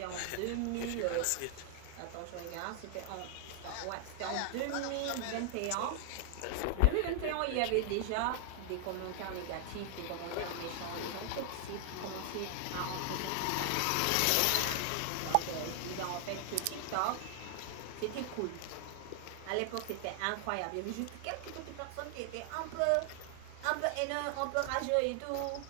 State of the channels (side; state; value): both; different; correlation 0.00